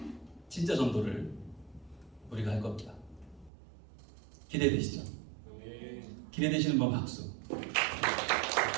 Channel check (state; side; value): drops out; left; at 3.5 s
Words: 진짜 전도를 우리가 할 겁니다. 기대되시죠? 기대되시는 분 박수.